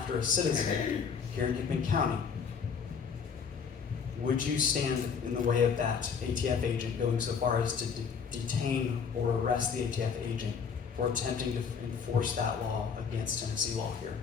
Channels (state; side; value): quieter; right; 6.3 dB